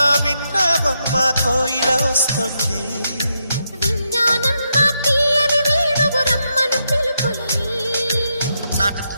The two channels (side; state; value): both; inverted; correlation -0.82